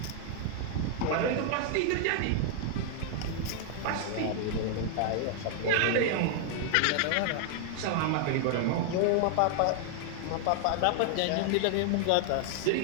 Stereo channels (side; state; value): both; different; correlation 0.00